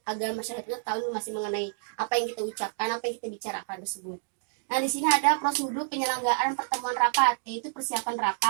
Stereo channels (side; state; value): left; silent; digital silence